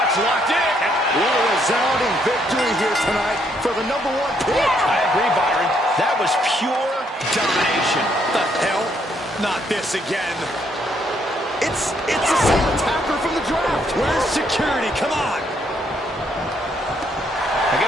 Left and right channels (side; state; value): both; normal; correlation 0.72